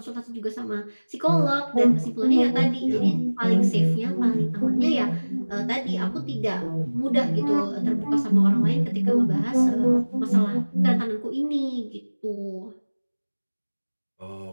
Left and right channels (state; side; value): inverted; both; correlation -1.00